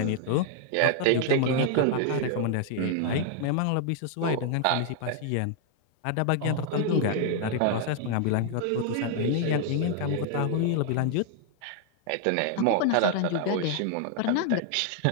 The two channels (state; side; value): different; both; correlation 0.00